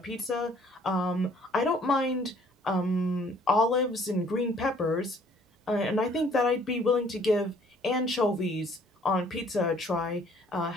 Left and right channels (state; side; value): normal; both; correlation 0.58